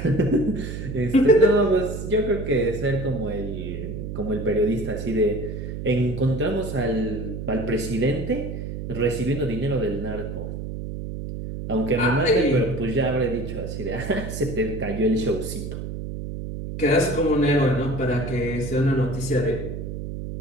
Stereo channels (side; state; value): right; noise; hum, 7 dB below the sound